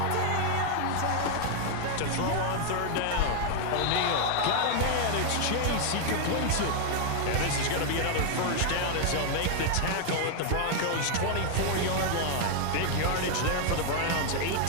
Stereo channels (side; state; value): both; different; correlation 0.00